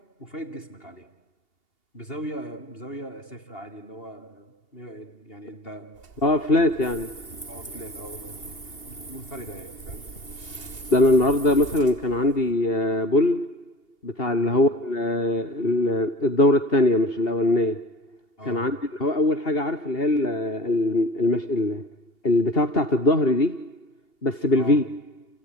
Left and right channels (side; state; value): right; late; 2.8 ms